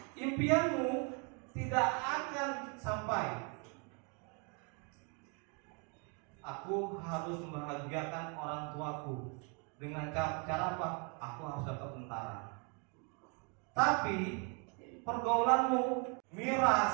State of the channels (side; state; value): left; quieter; 35.4 dB